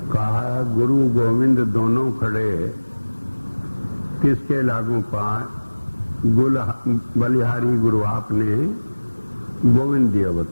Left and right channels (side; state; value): both; inverted; correlation -1.00